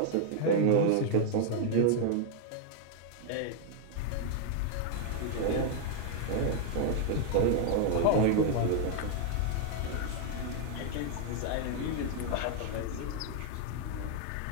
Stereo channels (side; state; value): both; different; correlation 0.00